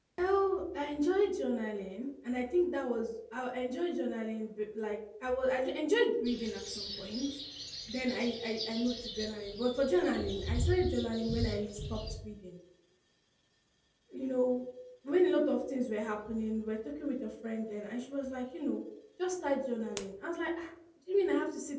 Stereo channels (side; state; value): both; identical; correlation 1.00